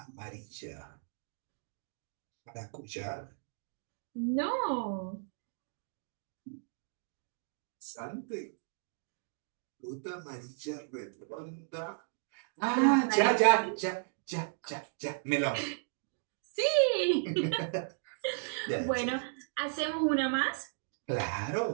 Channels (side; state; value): left; silent; digital silence